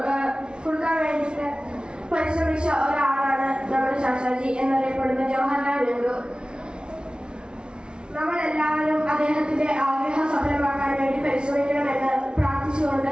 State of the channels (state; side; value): late; left; 0.056 ms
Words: വേണ്ടിയിട്ട് പരിശ്രമിച്ച ഒരാളാണ് നമ്മുടെ ചാച്ചാജി എന്നറിയപ്പെടുന്ന ജവഹർലാൽ നെഹ്റു. നമ്മളെല്ലാവരും അദ്ദേഹത്തിന്റെ ആഗ്രഹം സഫലമാക്കാൻ വേണ്ടി പരിശ്രമിക്കണമെന്ന്